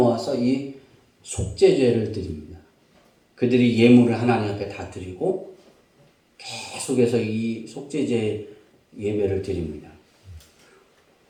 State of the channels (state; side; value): identical; both; correlation 1.00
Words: 이 속죄제를 드립니다. 그들이 예물을 하나님 앞에 다 드리고 계속해서 이 속죄제 예배를 드립니다.